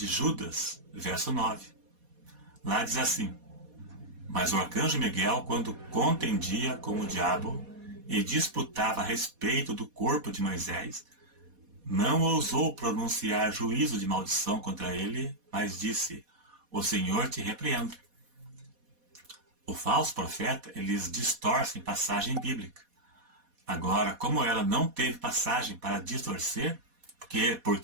Judas, verso 9. Lá diz assim: mas o arcanjo Miguel, quando contendia com o diabo, e disputava a respeito do corpo de Moisés, não ousou pronunciar juízo de maldição contra ele, mas disse: o Senhor te repreenda. O falso profeta, eles distorcem passagem bíblica. Agora, como ela não teve passagem para distorcer,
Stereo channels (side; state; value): left; late; 4.2 ms